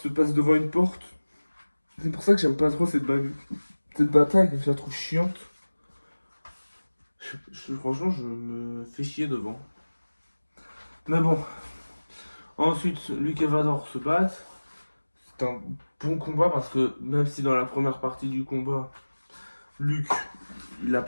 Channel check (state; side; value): inverted; both; correlation -1.00